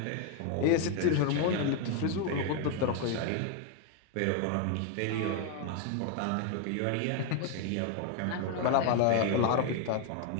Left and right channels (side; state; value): both; different; correlation 0.01